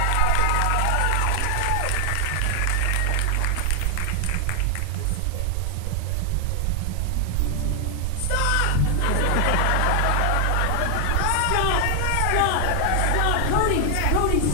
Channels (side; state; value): both; different; correlation 0.00